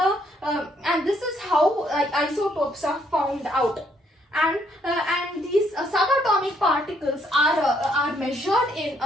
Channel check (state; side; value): normal; both; correlation 0.70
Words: this is how isotopes are found out. And these subatomic particles are measured in